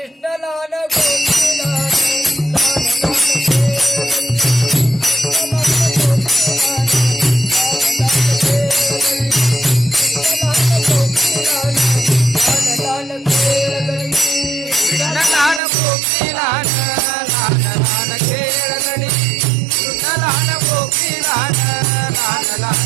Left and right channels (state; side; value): drops out; left; at 15.6 s